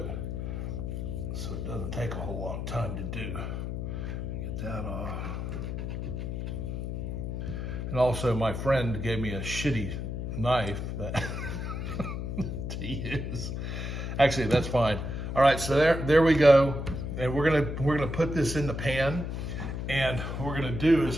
so it doesn't take a whole long time to do. Get that off. And also, my friend gave me a shitty knife that to use. Actually, that's fine. All right, so there we go. And we're gonna put this in the pan. And what we're gonna do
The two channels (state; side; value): noise; left; hum, 4 dB below the sound